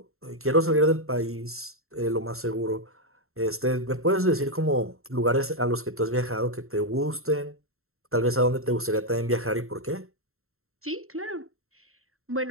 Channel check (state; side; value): late; left; 0.62 ms